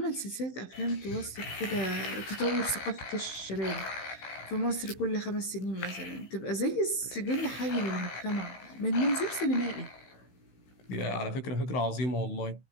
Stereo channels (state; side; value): late; right; 16 ms